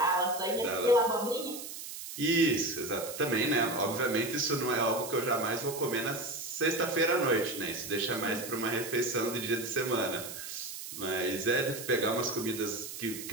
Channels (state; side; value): noise; right; hiss, 9 dB below the sound